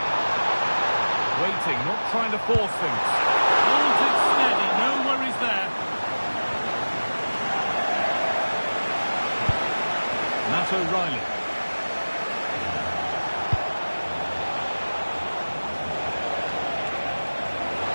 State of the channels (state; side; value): inverted; both; correlation -1.00